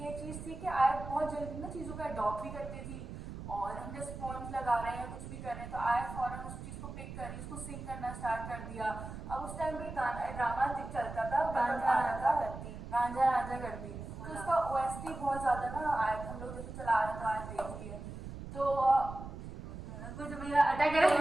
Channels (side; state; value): right; noise; rumble, 10 dB below the sound